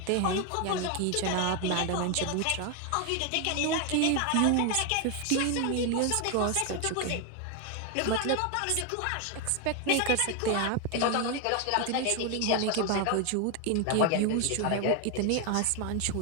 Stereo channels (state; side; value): different; both; correlation 0.01